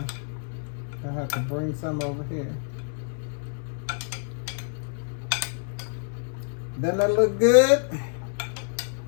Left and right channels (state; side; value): silent; right; digital silence